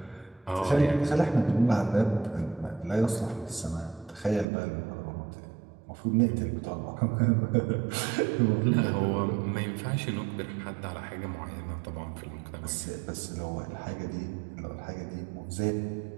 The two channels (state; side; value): drops out; left; at 4.5 s